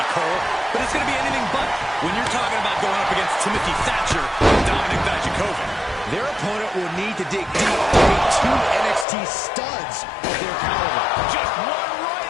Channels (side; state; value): right; drops out; at 9.1 s